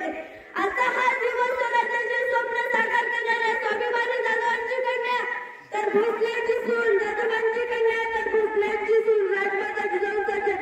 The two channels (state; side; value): identical; both; correlation 1.00